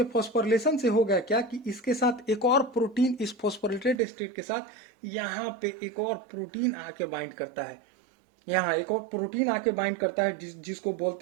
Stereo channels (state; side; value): drops out; left; at 4.0 s